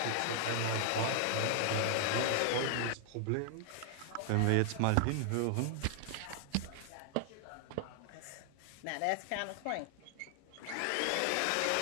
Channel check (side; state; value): both; different; correlation 0.00